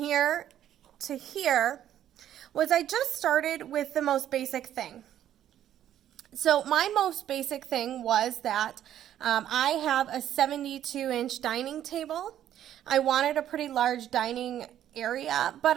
to here was I just started with the most basic thing. So my most basic thing was that I have a 72-inch dining table. I wanted a pretty large dining area, but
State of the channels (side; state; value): left; quieter; 11.2 dB